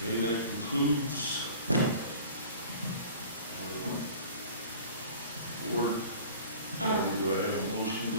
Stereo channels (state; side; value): inverted; both; correlation -0.43